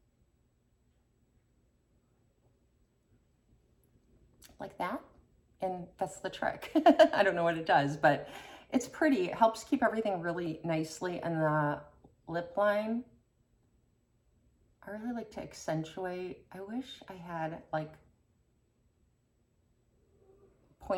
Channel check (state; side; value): identical; both; correlation 1.00